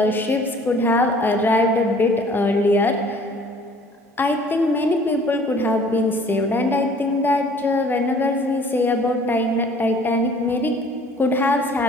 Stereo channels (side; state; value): both; normal; correlation 0.53